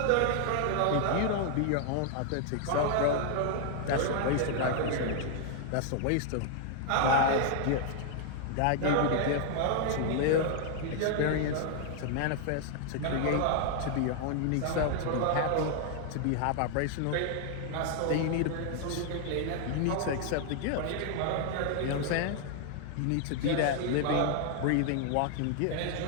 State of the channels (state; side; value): different; both; correlation 0.00